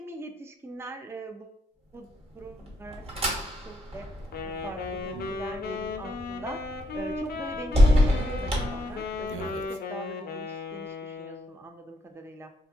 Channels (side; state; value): both; normal; correlation 0.76